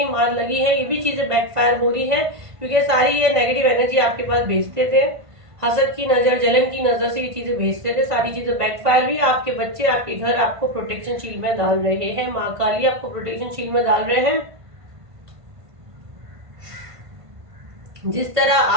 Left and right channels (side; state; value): left; late; 1.5 ms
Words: मार लगी है, ये भी चीजें बैकफायर हो रही है, क्योंकि सारी ये नेगेटिव एनर्जी आपके पास भेजते थे। हसद की नजर, जलन की नजर से ये चीजें भेजते थे, सारी चीजें बैकफायर हुई। आपके बच्चे, आपके घर आपको प्रोटेक्शन शील्ड में डाल रहे हैं, माँ काली आपको प्रोटेक्शन शील्ड में डाल रहे हैं। जिस तरह